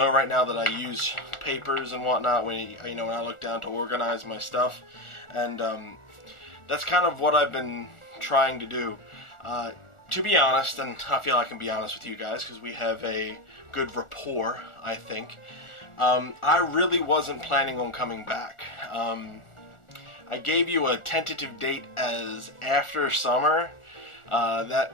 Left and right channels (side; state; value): right; late; 1.4 ms